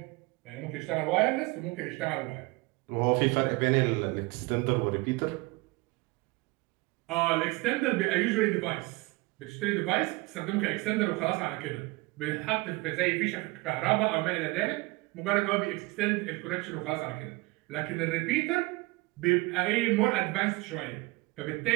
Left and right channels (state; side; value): quieter; left; 23.5 dB